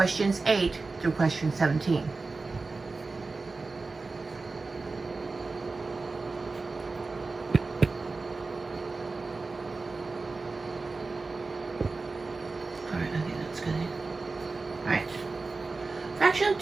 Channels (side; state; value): left; quieter; 3.8 dB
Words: 8 through Question 17. Alright, I think that's good. Alright. Fraction